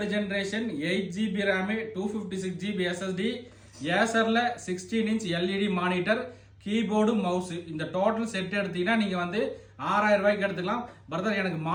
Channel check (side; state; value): both; identical; correlation 1.00